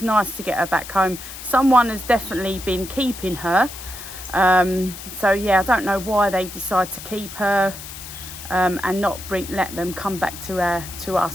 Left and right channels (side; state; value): left; noise; hiss, 12 dB below the sound